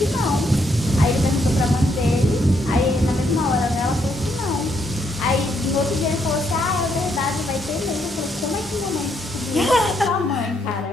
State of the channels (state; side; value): normal; both; correlation 0.75